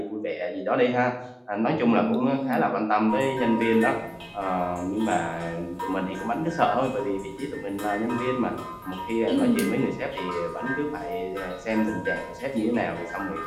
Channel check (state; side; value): identical; both; correlation 1.00